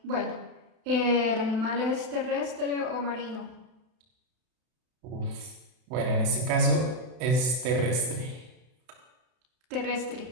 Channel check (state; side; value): late; left; 32 ms